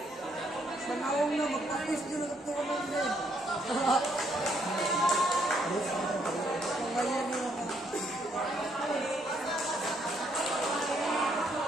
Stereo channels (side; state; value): both; normal; correlation 0.72